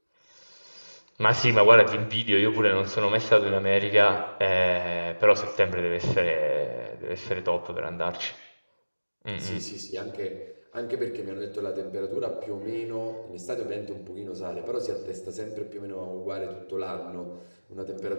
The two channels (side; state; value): both; inverted; correlation -1.00